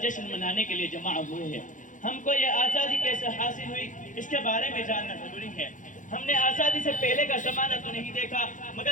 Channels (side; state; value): right; late; 0.37 ms